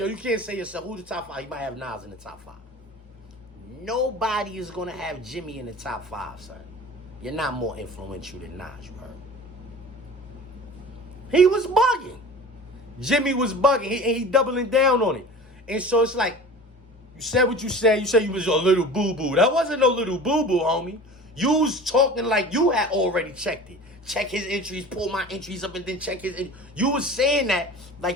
you can't say yourself, who's the top 5? He might have Nas in the top 5. Nobody is going to have Jimmy in the top 5, son. You're not more influential than Nas, you heard? He was bugging. Jimmy was bugging. He doubling down on it. And so it's like, you said what you said. You said you was a little boo-boo. That wasn't no little boo-boo, homie. You was talking like you had already checked it. Check his entries, pull my entries up, and then check his. You was saying that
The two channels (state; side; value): normal; both; correlation 0.38